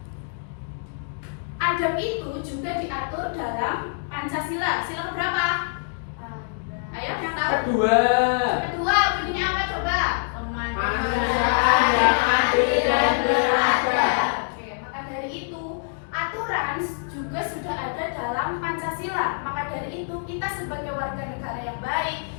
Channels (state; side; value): silent; right; digital silence